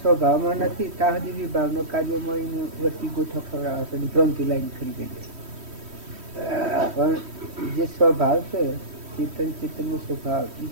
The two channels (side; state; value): left; late; 3.1 ms